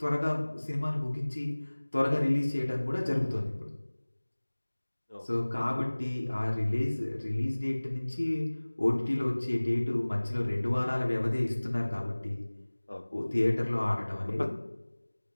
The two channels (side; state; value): both; inverted; correlation -1.00